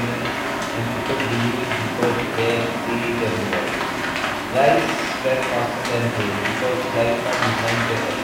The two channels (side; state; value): both; identical; correlation 1.00